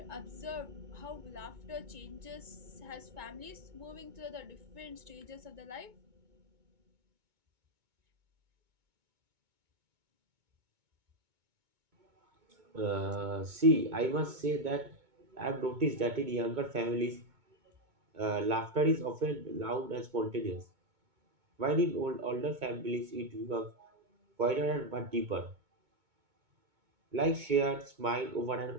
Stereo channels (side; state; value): left; late; 2.2 ms